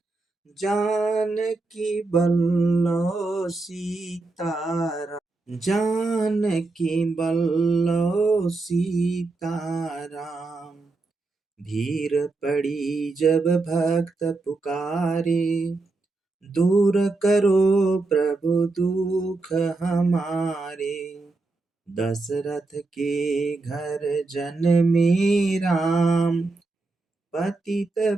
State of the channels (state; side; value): quieter; left; 3.4 dB